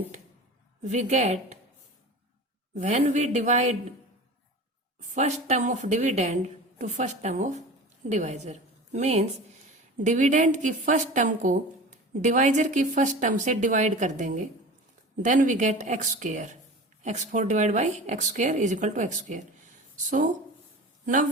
we get when we divide first term of dividend to first term of divisor, means dividend की first term को divisor की first term से divide कर देंगे, then we get x square. x4 divide by x square is equal to x square. So now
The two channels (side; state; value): both; normal; correlation 0.35